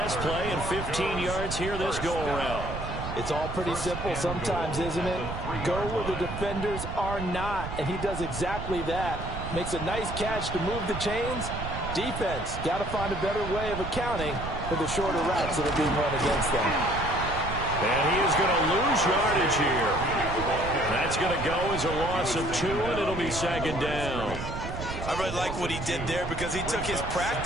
play and 15 yards here this go-around. It's all pretty simple sometimes, isn't it? Go where the defenders are not, and he does exactly that. Makes a nice catch to move the chains. Defense, got to find a better way of accounting for the shorter routes that are being run against them. And he is going to lose yardage here. That's going to go as a loss of 2, and it'll be second down. I really like what he did there because he took his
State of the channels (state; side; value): noise; right; rumble, 7 dB below the sound